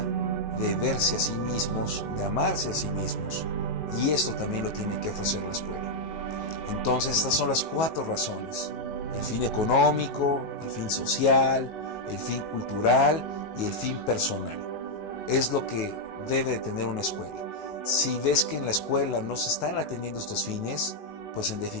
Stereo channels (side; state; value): right; late; 19 ms